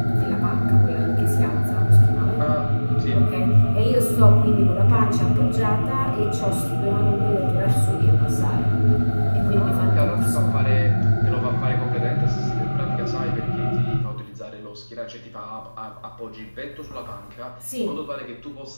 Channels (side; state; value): both; inverted; correlation -1.00